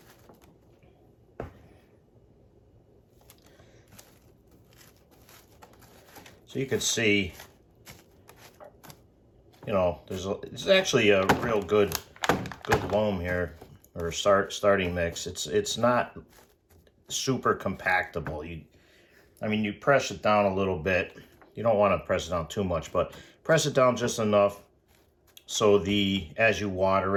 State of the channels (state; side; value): identical; both; correlation 1.00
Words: So you can see, you know, it's actually a real good loam here, or starting mix. It's not super compactable. I mean, you press it down a little bit. You don't want to press it down too much, but press it down just enough so as you